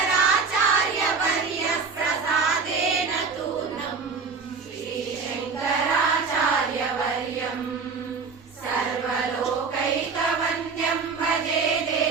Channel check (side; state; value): left; quieter; 4.9 dB